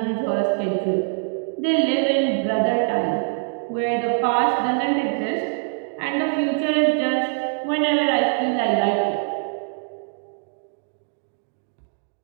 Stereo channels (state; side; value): silent; left; digital silence